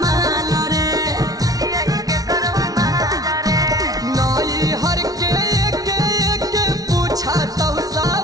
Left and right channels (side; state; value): left; late; 0.18 ms